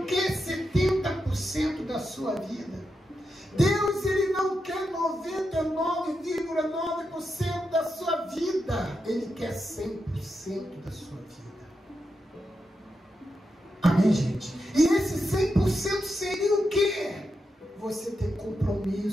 quer 70% da sua vida. Deus, Ele não quer 99,9% da sua vida. Ele quer 100% da sua vida. Amém, gente? E esse 100% seria o quê? Você ter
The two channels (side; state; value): both; normal; correlation 0.86